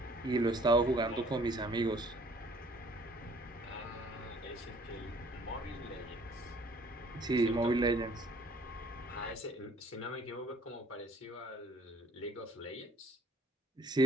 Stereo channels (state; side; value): normal; both; correlation 0.57